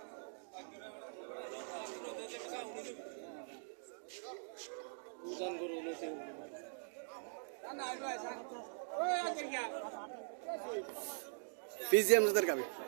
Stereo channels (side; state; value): left; silent; digital silence